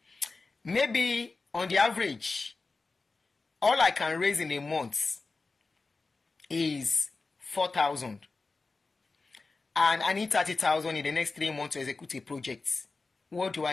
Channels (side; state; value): right; quieter; 3.8 dB